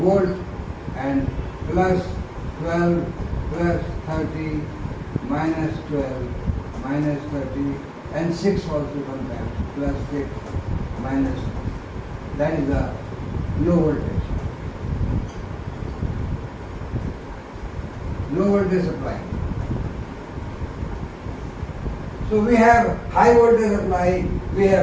and plus 12 plus 30 minus 12 minus 30 and 6 also sometimes plus 6 minus, that is the low voltage. Low voltage supply. So we have high voltage supply, we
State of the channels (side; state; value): both; identical; correlation 1.00